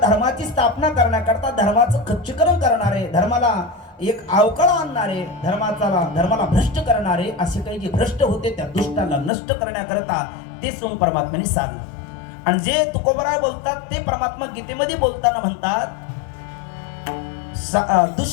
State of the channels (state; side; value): drops out; right; at 9.3 s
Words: धर्माची स्थापना करण्याकरता धर्माचं खच्चीकरण करणारे, धर्माला एक अवकळा आणणारे, धर्माला भ्रष्ट करणारे असे काही जे भ्रष्ट होते त्या दुष्टांना नष्ट करण्याकरता ते सोंग परमात्म्याने सारलं. आणि जे तुकोबराय बोलतात ते परमात्मा गीतेमध्ये बोलताना म्हणतात